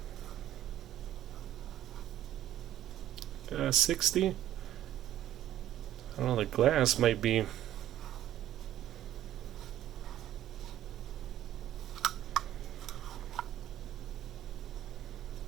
60. I don't know, the glass might be.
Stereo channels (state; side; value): quieter; left; 12.2 dB